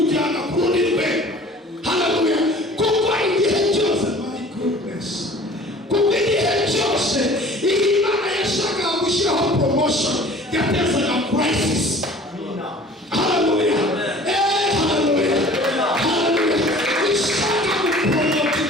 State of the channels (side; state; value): both; normal; correlation 0.47